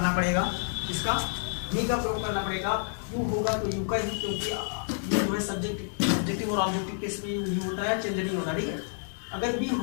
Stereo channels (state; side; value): silent; right; digital silence